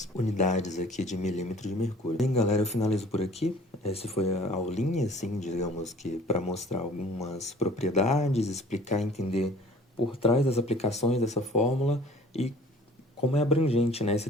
unidades aqui de milímetro de mercúrio. Bem, galera, eu finalizo por aqui. Essa foi a aulinha, assim, digamos que para mostrar algumas propriedades, explicar, entender por trás das aplicações dessa fórmula e como é abrangente, né, esse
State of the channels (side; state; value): both; normal; correlation 0.51